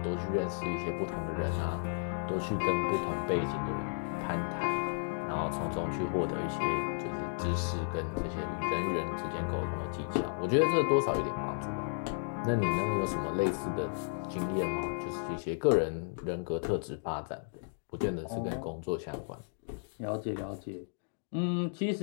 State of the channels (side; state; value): right; silent; digital silence